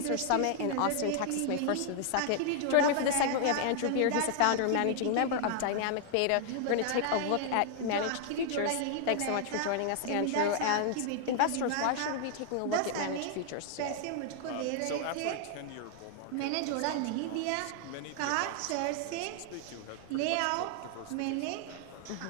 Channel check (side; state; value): both; different; correlation 0.00